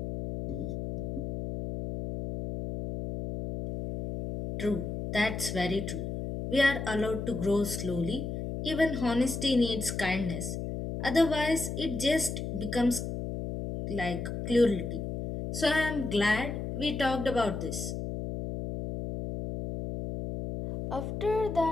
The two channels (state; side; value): noise; left; hum, 5 dB below the sound